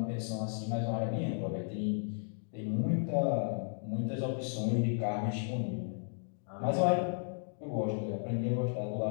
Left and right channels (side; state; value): right; silent; digital silence